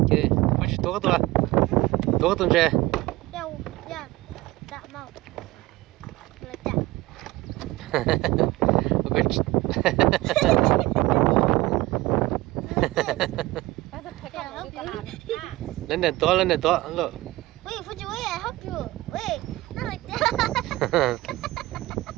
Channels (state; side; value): quieter; left; 19.2 dB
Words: Okay, push toa toa. Toa toa je. Yeah, yeah, that mouth. Like that. Okay. Lên đèn toa, look. Wait, Fuji, wait, I help you. Wait, not like that.